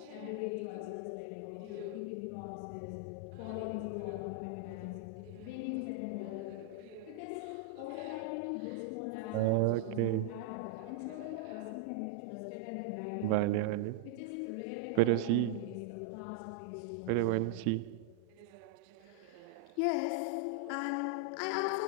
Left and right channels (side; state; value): both; different; correlation -0.01